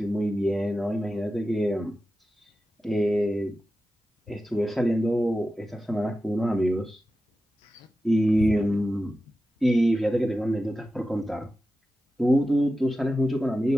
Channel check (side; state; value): both; normal; correlation 0.93